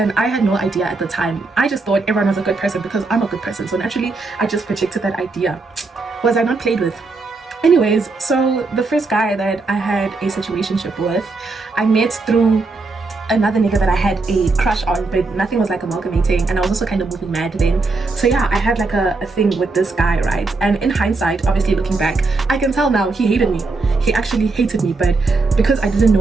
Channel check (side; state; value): left; quieter; 3.7 dB